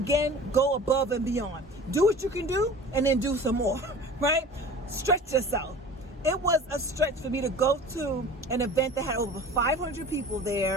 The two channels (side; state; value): both; normal; correlation 0.40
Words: go above and beyond. Do what you can do and then do some more, right? Stretch yourself. It was a stretch for me to go to an event that had over 500 people